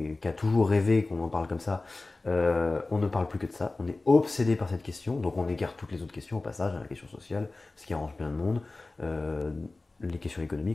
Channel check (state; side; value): quieter; right; 3.2 dB